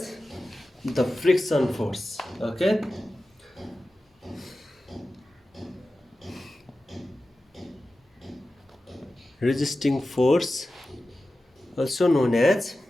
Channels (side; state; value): both; normal; correlation 0.94